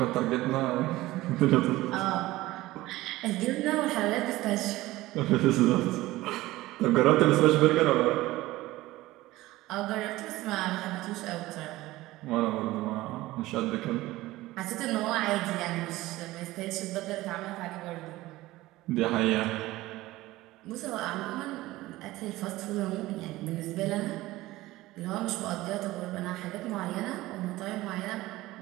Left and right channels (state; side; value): quieter; left; 17.8 dB